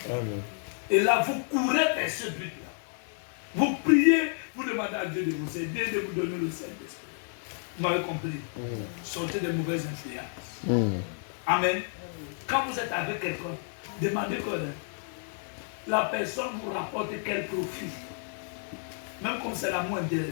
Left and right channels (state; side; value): silent; right; 56 dB below the other